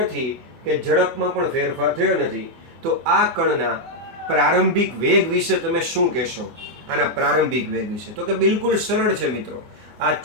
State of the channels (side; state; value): left; late; 24 ms